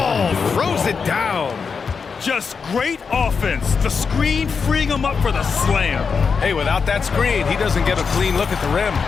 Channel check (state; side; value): quieter; right; 5.6 dB